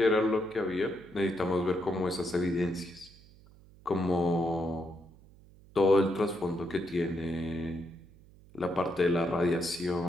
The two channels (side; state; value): right; noise; hum, 24 dB below the sound